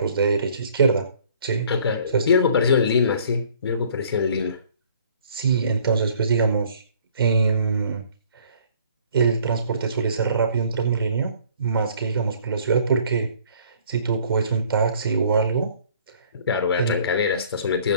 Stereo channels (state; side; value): inverted; both; correlation -0.56